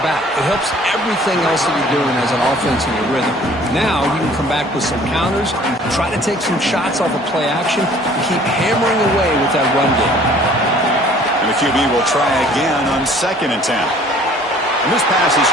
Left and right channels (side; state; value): both; normal; correlation 0.53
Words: back. It helps everything else that you're doing as an offense in your rhythm. Now you can come back with some counters, try to take some shots off of play action, and keep hammering away with that run game. And the QB will try again on 2nd and 10. And this pass is